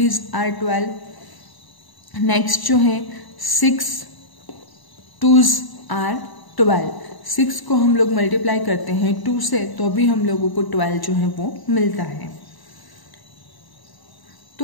आर 12। नेक्स्ट जो है 6 2s आर 12। 6 को हम लोग मल्टीप्लाई करते हैं 2 से तो भी हम लोगों को 12 जो है वो मिलता है।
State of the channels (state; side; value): late; right; 1.0 ms